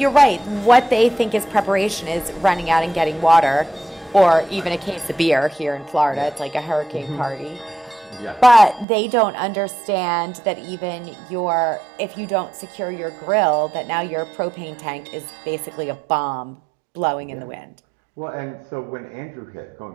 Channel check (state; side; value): drops out; left; at 8.8 s